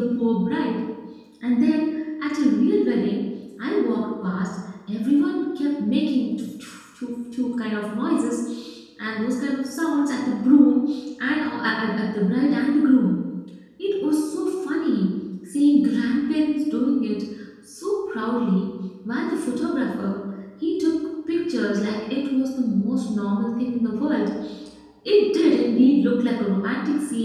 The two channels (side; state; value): both; identical; correlation 1.00